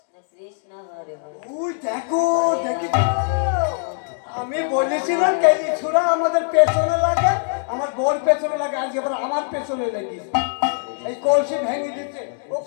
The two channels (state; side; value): silent; right; digital silence